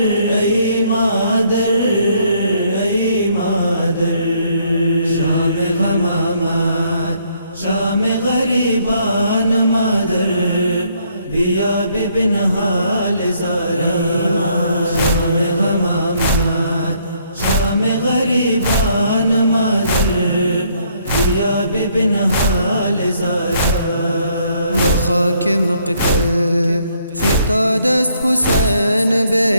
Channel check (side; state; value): both; inverted; correlation -0.68